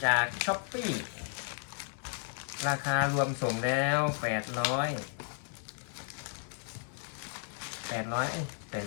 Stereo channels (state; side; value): silent; right; 55 dB below the other